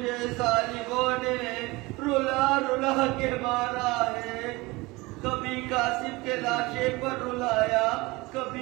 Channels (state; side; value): quieter; left; 22.6 dB